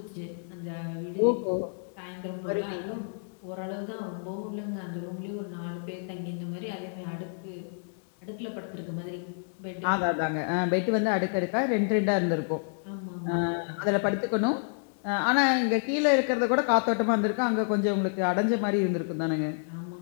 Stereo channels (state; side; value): silent; right; digital silence